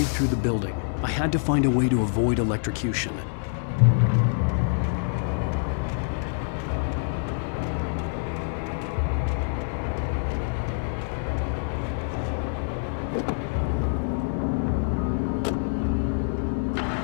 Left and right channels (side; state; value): right; silent; 61 dB below the other